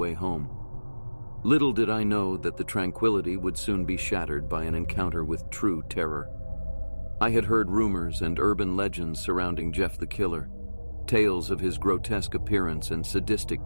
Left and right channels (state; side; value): inverted; both; correlation -1.00